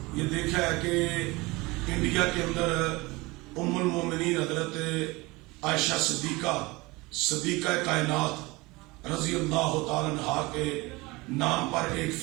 یہ دیکھا ہے کہ انڈیا کے اندر ام المومنین حضرت عائشہ صدیقہ کائنات رضی اللہ تعالیٰ عنہا کے نام پر ایک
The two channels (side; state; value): left; quieter; 23.1 dB